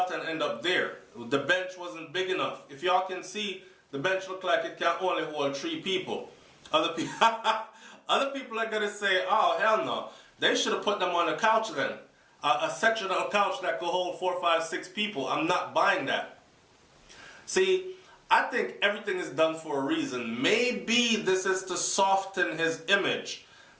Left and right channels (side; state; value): both; identical; correlation 1.00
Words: end up there? The bench wasn't big enough. If y'all can see, the bench looked like it can only hold 3 people. Other people are going to say, oh, hell no. They should have put them on a couch then. A sectional couch that could hold 4, 5, 6 people. I'm not buying that. See, I think everything is done for a reason. Maybe this is to soften his image.